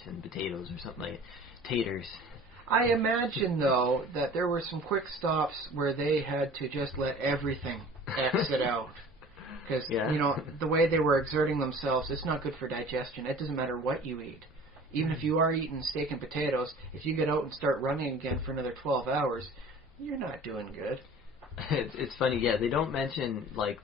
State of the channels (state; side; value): normal; both; correlation 0.45